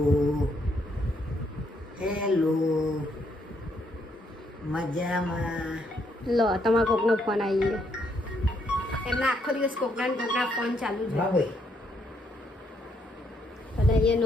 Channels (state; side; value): normal; both; correlation 0.73